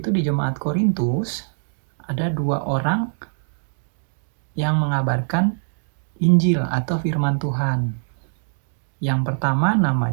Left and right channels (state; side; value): silent; left; digital silence